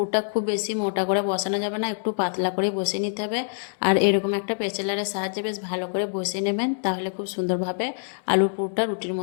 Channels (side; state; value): right; silent; digital silence